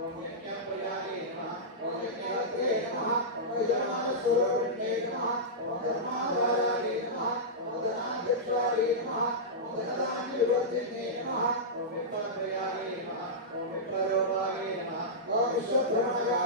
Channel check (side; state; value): both; normal; correlation -0.13